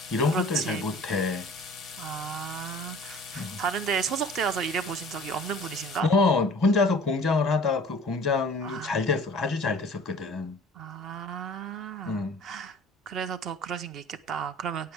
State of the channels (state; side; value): normal; both; correlation 0.47